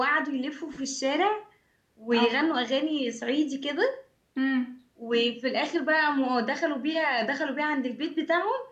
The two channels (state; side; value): identical; both; correlation 1.00